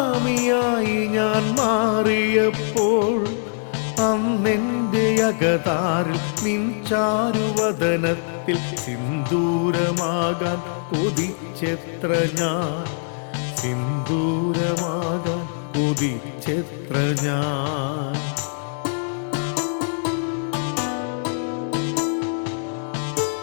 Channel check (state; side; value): silent; right; digital silence